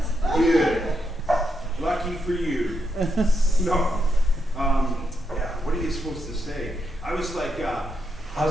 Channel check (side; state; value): both; normal; correlation 0.82